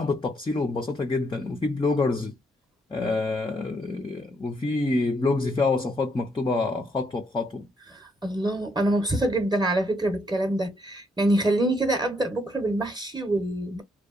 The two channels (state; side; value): normal; both; correlation 0.74